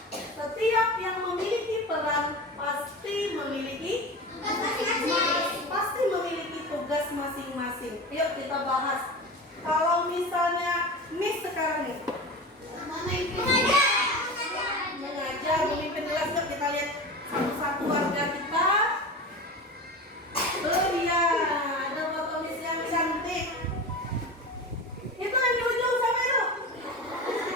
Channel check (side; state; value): both; normal; correlation 0.29